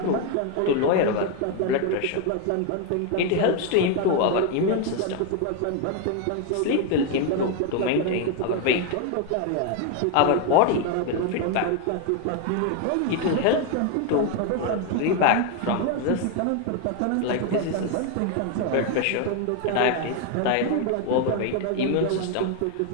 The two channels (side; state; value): both; different; correlation 0.01